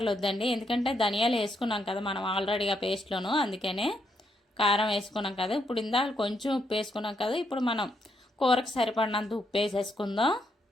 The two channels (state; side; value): normal; both; correlation 0.77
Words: ఎందుకంటే ధనియాలు వేసుకున్నాం కదా మనం ఆల్రెడీగా పేస్ట్లోను, అందుకనే కారం వేసుకున్నాం కదా. ఇప్పుడు ఇందాక కొంచెం ఉప్పు వేసుకున్నాం కదా, ఇప్పుడు మనం కూరకు సరిపడినంత ఉప్పు వేసేసుకుందాం.